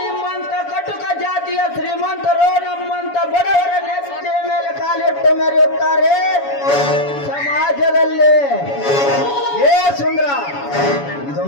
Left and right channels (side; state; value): right; late; 7.1 ms